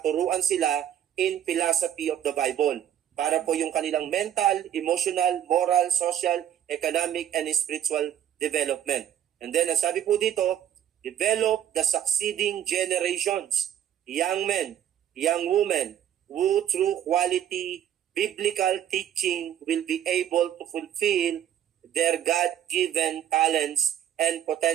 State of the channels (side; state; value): left; quieter; 10.5 dB